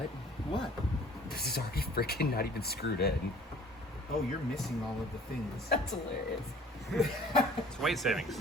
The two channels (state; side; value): normal; both; correlation 0.52